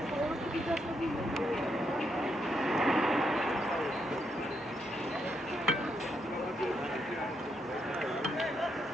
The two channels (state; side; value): normal; both; correlation 0.79